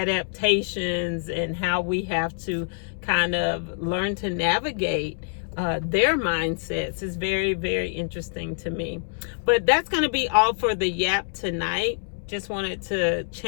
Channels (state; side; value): silent; right; 61 dB below the other